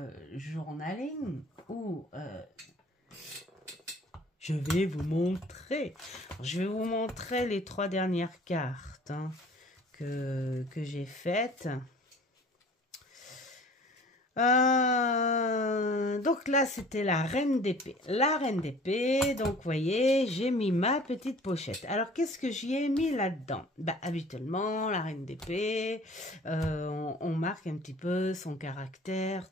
journaling où je vais vous montrer. Je vais vous montrer les 3 dernières cartes que j'ai faites. Donc là, c'était la reine d'épée. La reine d'épée, donc vous voyez, j'ai mis ma petite pochette. Alors, qu'est-ce que j'y ai mis là-dedans? Habituellement, la reine d'épée, on marque un petit peu son caractère,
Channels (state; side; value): normal; both; correlation 0.48